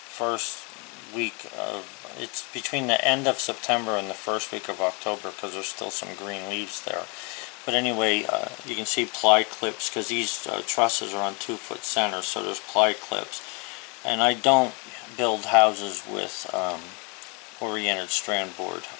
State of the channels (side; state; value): right; quieter; 32.3 dB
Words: week of, it's between the end of September and the first week of October, because there's still some green leaves there. But anyway, you can see ply clips, because these trusses are on 2-foot centers, so there's ply clips. And I don't build houses with oriented strand board.